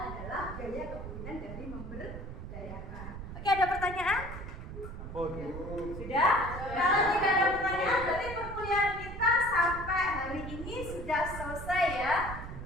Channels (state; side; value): noise; right; rumble, 9 dB below the sound